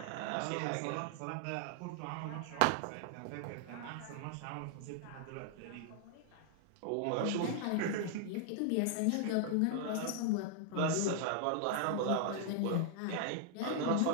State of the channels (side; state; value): both; different; correlation 0.00